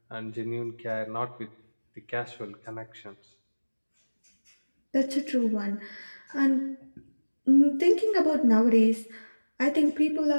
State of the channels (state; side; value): inverted; both; correlation -1.00